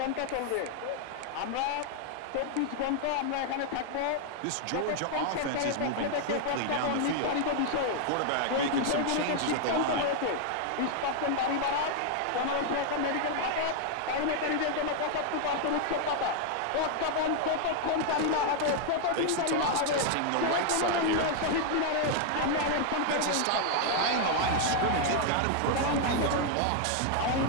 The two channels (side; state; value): both; different; correlation 0.00